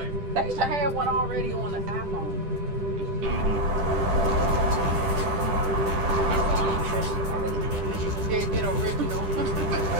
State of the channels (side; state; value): left; late; 10 ms